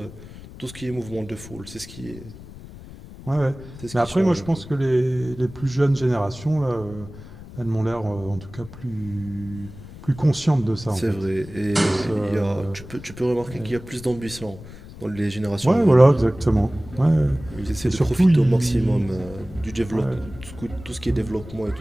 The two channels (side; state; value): left; noise; rumble, 16 dB below the sound